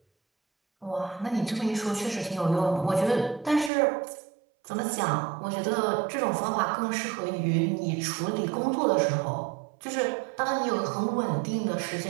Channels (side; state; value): left; drops out; at 3.7 s